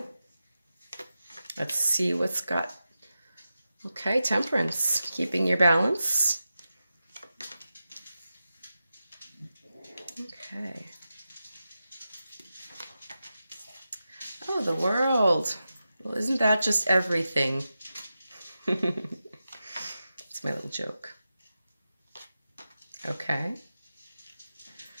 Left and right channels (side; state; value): both; inverted; correlation -0.91